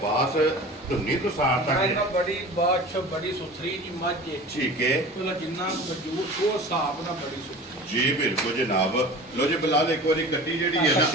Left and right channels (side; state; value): both; normal; correlation 0.38